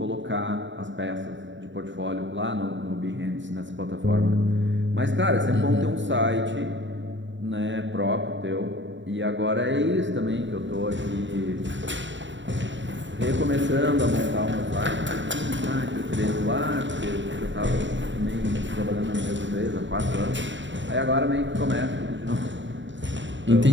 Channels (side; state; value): left; late; 0.54 ms